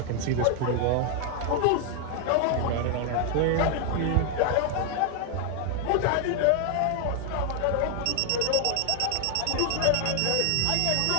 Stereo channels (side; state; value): both; different; correlation 0.00